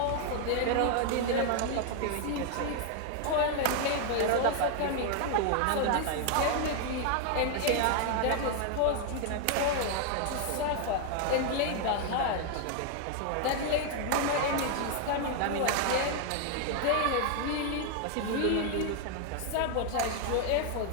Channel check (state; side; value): different; both; correlation 0.00